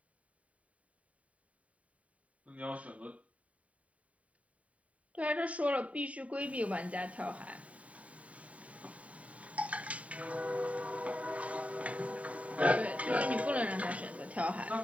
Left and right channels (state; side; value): late; left; 0.067 ms